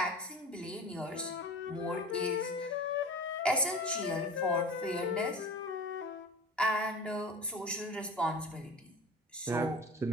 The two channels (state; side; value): normal; both; correlation 0.35